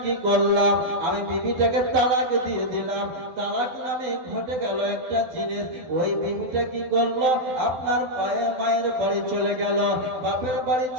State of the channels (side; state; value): left; late; 12 ms